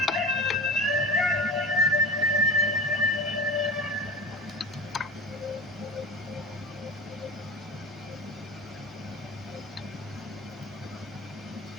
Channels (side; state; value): both; normal; correlation 0.32